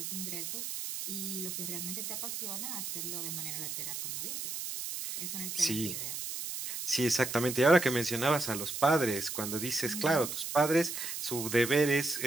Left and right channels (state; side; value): noise; right; hiss, 5 dB below the sound